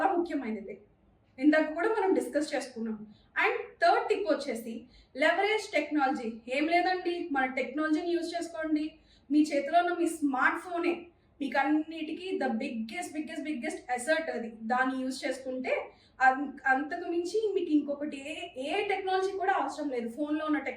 ముఖ్యమైనది. ఇందాక కూడా మనం డిస్కస్ చేసుకున్నాం. అండ్ థర్డ్ టిప్ వచ్చేసి లెవరేజ్ టెక్నాలజీ. ఏం లేదండి, మన టెక్నాలజీని యూజ్ చేసుకోండి. మీ చేతిలో ఉన్న మీ స్మార్ట్ ఫోనే మీకు అన్నిటికీ ద బిగ్గెస్ట్ అసెట్ అది. దాన్ని యూజ్ చేసుకుంటే అంతకు మించి మీకు ఇంకొకటి ఏ టెక్నాలజీ కూడా అవసరం లేదు. ఫోన్లో ఉన్న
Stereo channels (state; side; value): identical; both; correlation 1.00